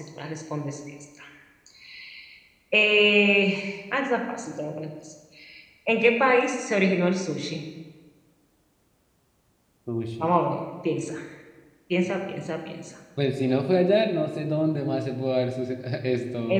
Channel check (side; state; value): both; identical; correlation 1.00